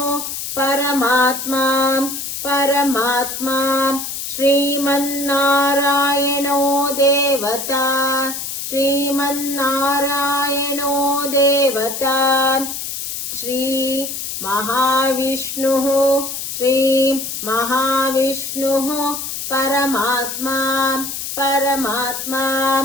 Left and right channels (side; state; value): left; noise; hiss, 6 dB below the sound